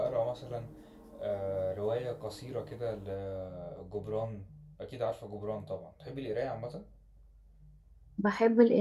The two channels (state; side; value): identical; both; correlation 1.00